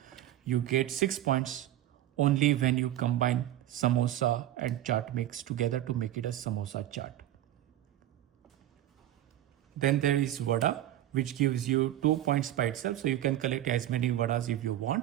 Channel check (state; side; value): quieter; left; 13.0 dB